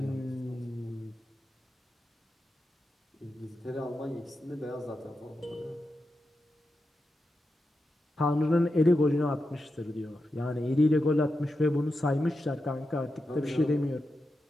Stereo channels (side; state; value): both; normal; correlation 0.89